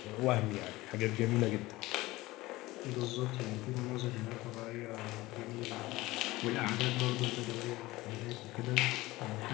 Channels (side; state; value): right; quieter; 19.2 dB